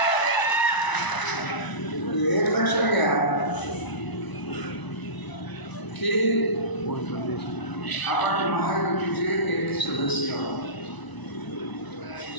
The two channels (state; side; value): late; right; 1.0 ms